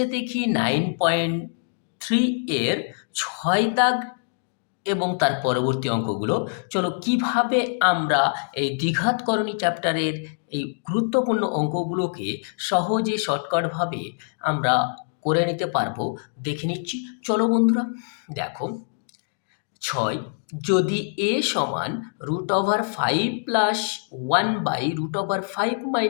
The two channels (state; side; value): silent; right; digital silence